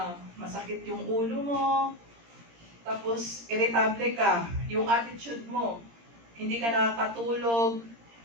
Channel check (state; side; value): late; left; 17 ms